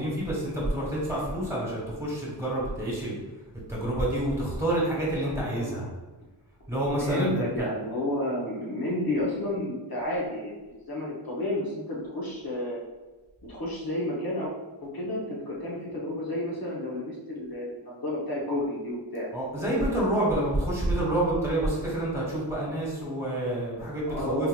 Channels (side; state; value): both; normal; correlation 0.26